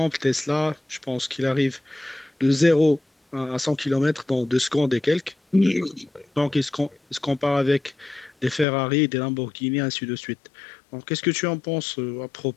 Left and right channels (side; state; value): right; drops out; at 8.7 s